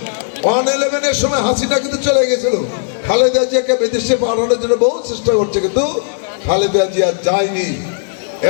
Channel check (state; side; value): silent; right; digital silence